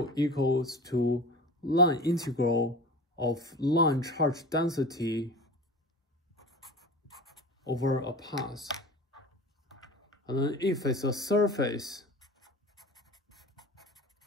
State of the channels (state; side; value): normal; both; correlation 0.35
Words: equals to line integral of line charge density over a path. And then if it's a surface,